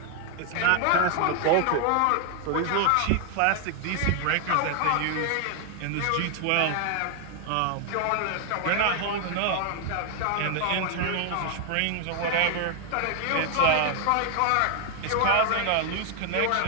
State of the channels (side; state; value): both; different; correlation 0.00